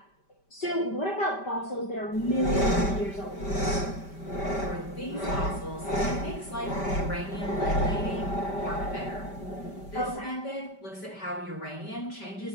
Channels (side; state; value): right; late; 5.1 ms